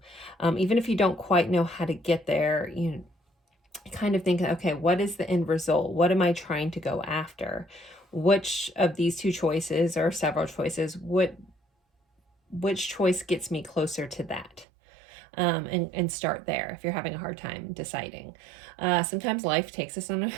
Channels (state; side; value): drops out; left; at 14.7 s